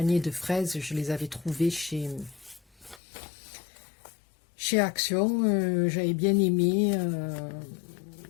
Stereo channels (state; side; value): drops out; right; at 3.0 s